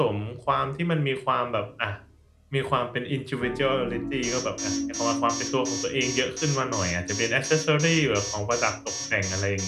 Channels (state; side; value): identical; both; correlation 1.00